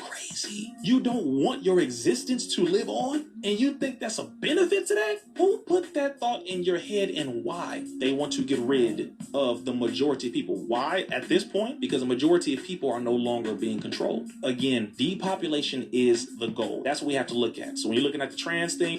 You don't want your existence to live on, and you think that's a benefit to that? Who put that thought in your head, and why? They want to get rid of the majority of people. Why at this point? Because the majority of people are no longer being controlled. Again, depopulation is the goal. That's what we have to look at. So when you're looking at the trans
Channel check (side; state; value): both; identical; correlation 1.00